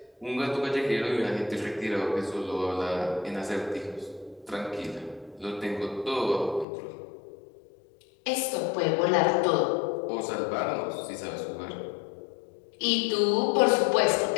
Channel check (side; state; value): right; drops out; at 6.7 s